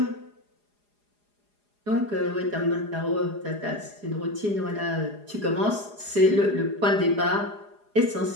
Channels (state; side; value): late; left; 4.8 ms